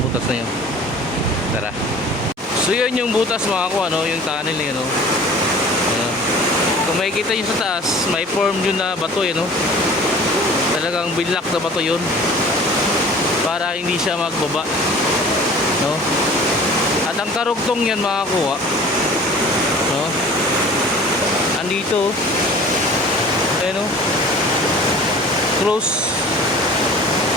butas na yun. Tara. So yun yung butas mga ko, ano, yung tunnel yun, no? Ayan. Kung makikita nyo sa taas, may form yun na bato yun, no? Talagang binlock na bato yun para hindi siya magbaba, no? At ang karugtong yan mga kuha, no? Andito, ayun, no? Close.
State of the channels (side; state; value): both; normal; correlation 0.45